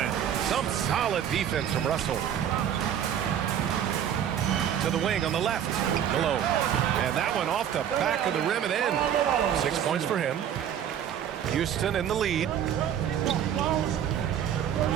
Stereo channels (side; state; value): left; quieter; 9.6 dB